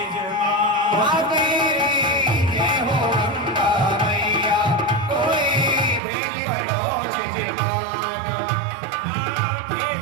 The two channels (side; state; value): left; drops out; at 6.0 s